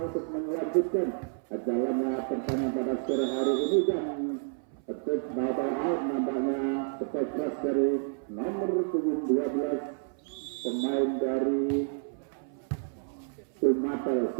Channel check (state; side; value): silent; left; 58 dB below the other